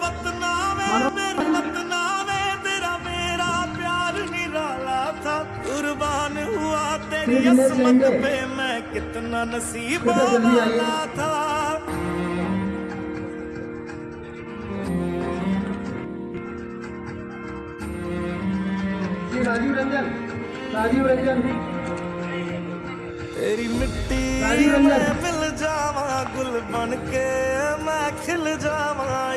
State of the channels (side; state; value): both; identical; correlation 1.00